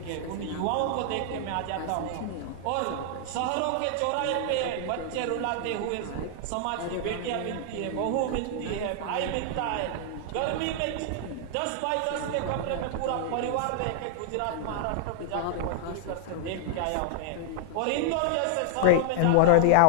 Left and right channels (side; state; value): both; different; correlation -0.01